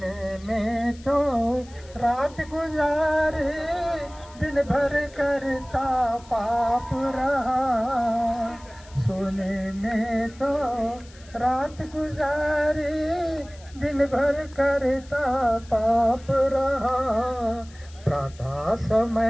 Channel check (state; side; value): noise; left; hiss, 24 dB below the sound